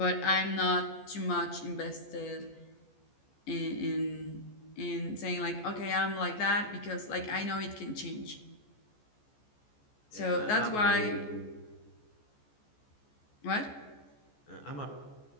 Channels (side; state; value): right; late; 14 ms